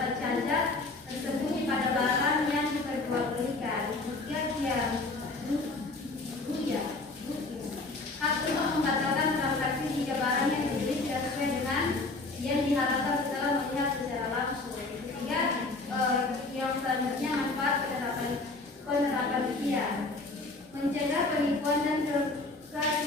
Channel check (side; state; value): right; quieter; 3.3 dB